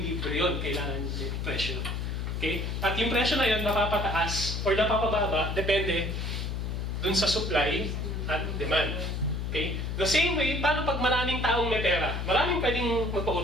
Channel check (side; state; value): left; noise; hum, 3 dB below the sound